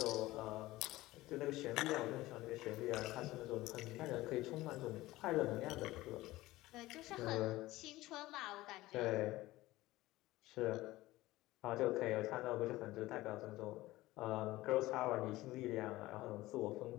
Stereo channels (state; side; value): quieter; right; 17.9 dB